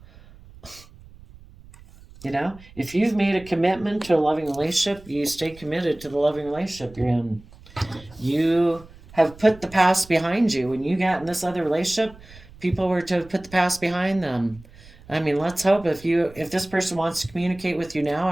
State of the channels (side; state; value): right; noise; rumble, 22 dB below the sound